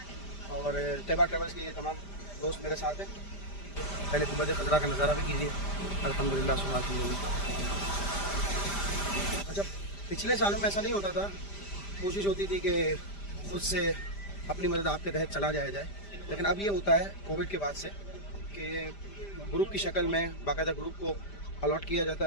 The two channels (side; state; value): right; late; 5.0 ms